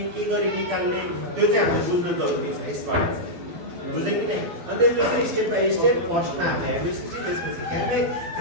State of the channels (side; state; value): left; late; 12 ms